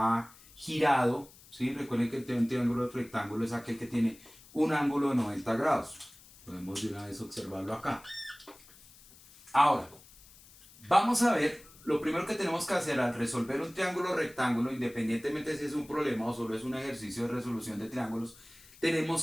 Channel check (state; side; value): noise; left; hiss, 23 dB below the sound